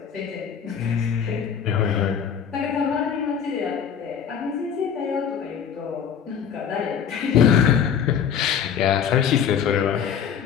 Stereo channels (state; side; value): quieter; right; 7.9 dB